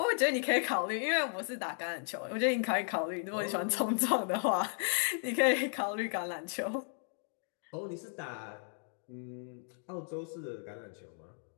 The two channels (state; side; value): silent; right; 55 dB below the other